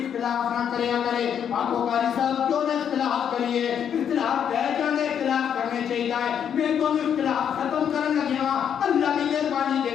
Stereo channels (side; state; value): right; quieter; 8.5 dB